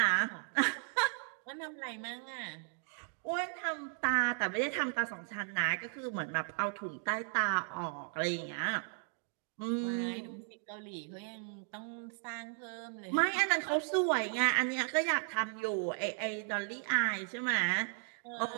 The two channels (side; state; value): left; silent; 54 dB below the other